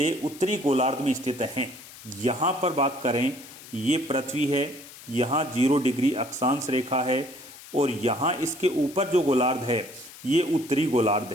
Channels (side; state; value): left; noise; hiss, 17 dB below the sound